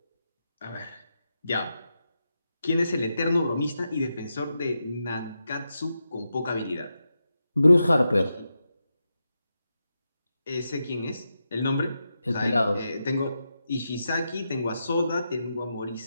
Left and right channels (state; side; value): inverted; both; correlation -0.87